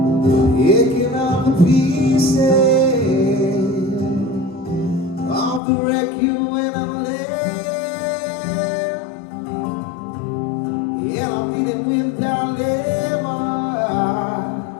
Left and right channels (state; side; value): drops out; right; at 5.6 s